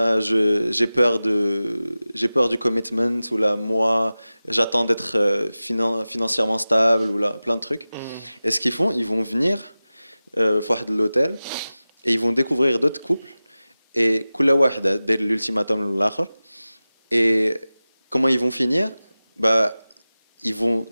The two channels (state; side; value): inverted; both; correlation -0.96